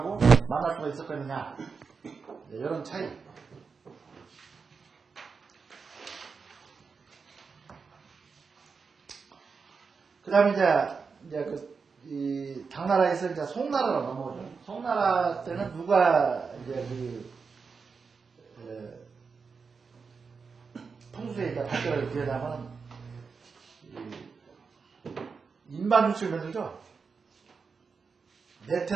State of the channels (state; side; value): quieter; left; 5.2 dB